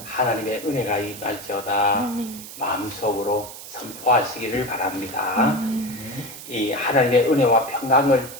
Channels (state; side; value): noise; right; hiss, 13 dB below the sound